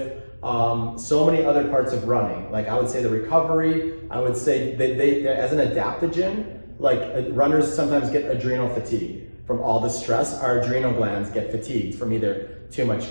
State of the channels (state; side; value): inverted; both; correlation -1.00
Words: so many other parts of running. Like I would say the recovery, I would say they as an adaptogen, like runners sometimes get adrenal fatigue from all the stress. Our adrenal glands get fatigued from either too much